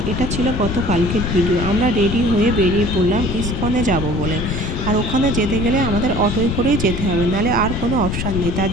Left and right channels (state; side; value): noise; left; rumble, 3 dB below the sound